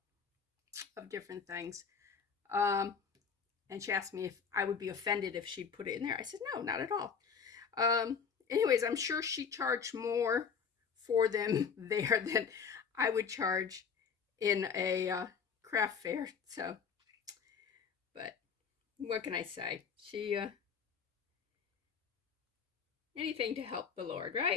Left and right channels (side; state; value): right; quieter; 6.4 dB